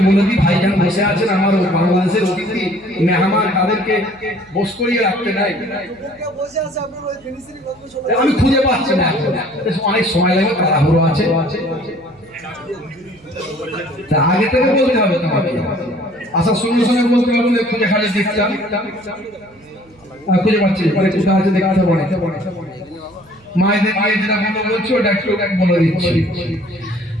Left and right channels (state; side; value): noise; right; hum, 28 dB below the sound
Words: বলে দিই। ভাইজান বসে আছেন, আমার বাংলাদেশের অতিথি মেহমান, তাদেরকে বস করিয়ে রাখতে নাই, আমি খুঁজে পাচ্ছি না, অনেক সময় লাগবে, তাড়াহুড়ো আছে, তা আগে থেকে বলতে হবে তোমাকে। আসার সঙ্গে সঙ্গে বলতে পারবো খুঁজে খালি দেখতাম, খুঁজে পাচ্ছি কোথায় আছে দেখতে পারে। মায়েদের মায়ের যেটা বলছি ওটা একটু বলে দিচ্ছি।